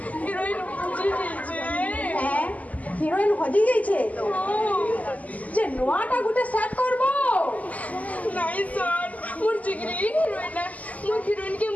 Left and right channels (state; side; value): late; right; 0.074 ms